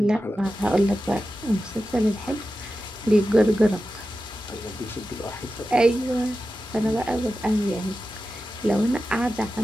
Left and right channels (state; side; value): normal; both; correlation 0.92